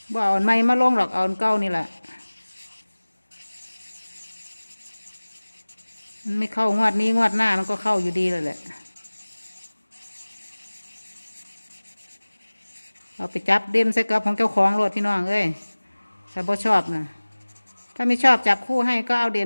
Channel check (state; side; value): inverted; both; correlation -1.00